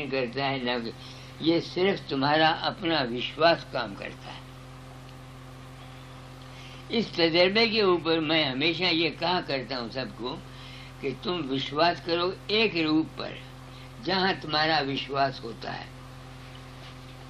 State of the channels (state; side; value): identical; both; correlation 1.00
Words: کرتا ہے، نہ کوئی، یہ صرف تمہارا اپنا وشواس کام کرتا ہے۔ اس تجربے کے اوپر میں ہمیشہ یہ کہا کرتا ہوں سب کو کہ تم وشواس کرو ایک روپ پر جہاں تمہارا وشواس ہوتا ہے۔